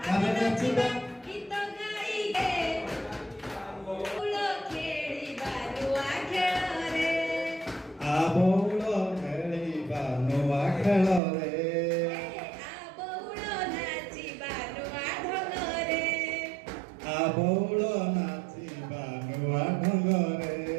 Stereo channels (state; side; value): drops out; left; at 11.2 s